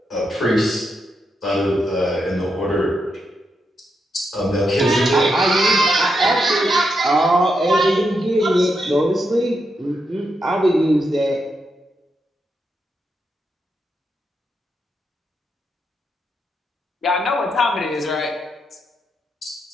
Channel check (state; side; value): normal; both; correlation 0.83